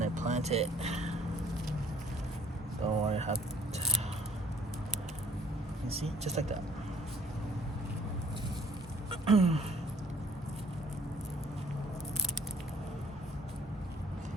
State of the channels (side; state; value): both; normal; correlation 0.58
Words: I plant it. Don't worry, have. You see, just like that.